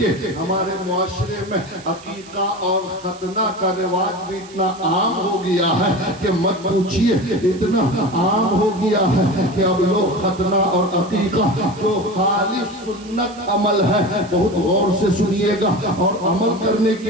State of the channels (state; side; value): noise; right; hiss, 21 dB below the sound